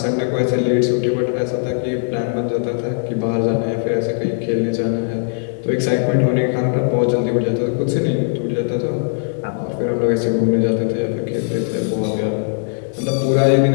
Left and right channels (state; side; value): silent; right; 66 dB below the other